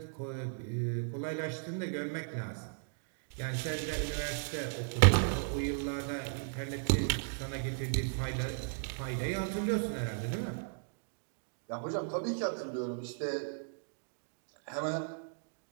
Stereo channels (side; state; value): left; silent; digital silence